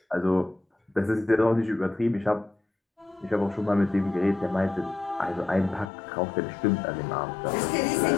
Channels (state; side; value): drops out; right; at 5.9 s